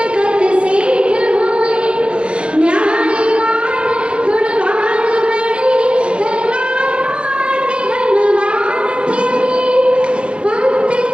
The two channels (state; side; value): late; left; 0.057 ms